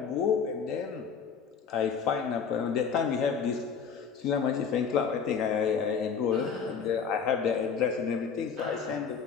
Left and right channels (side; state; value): right; quieter; 6.4 dB